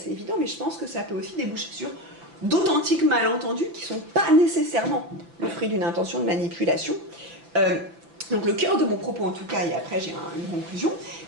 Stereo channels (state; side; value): late; left; 5.9 ms